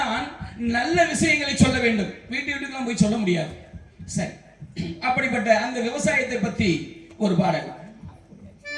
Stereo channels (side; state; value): both; identical; correlation 1.00